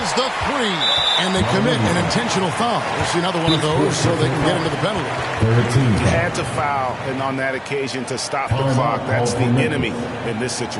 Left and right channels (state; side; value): identical; both; correlation 1.00